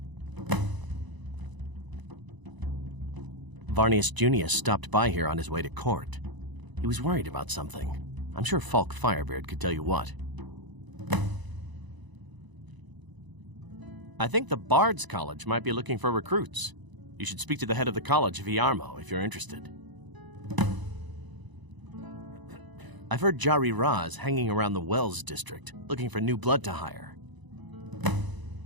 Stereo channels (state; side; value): late; left; 1.0 ms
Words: Varnius Junius stopped by here on his way to court. He was worried about something. I'm sure Falk Firebeard could tell you what. I think the Bards College might be looking for recruits. You should speak to the head of the college, C.R.M.O, if you're interested. I've heard Jari Raz hanging around the Wells district, looking for new blood to hire.